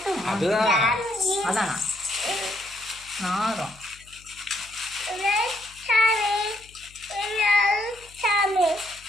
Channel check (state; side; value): noise; left; hum, 25 dB below the sound